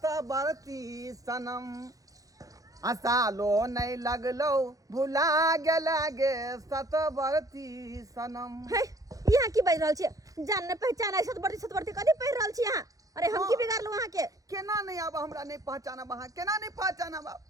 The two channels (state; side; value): late; left; 0.17 ms